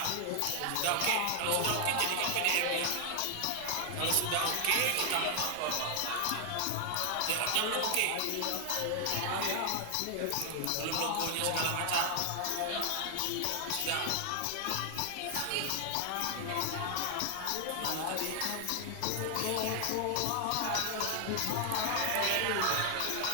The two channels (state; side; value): different; both; correlation 0.00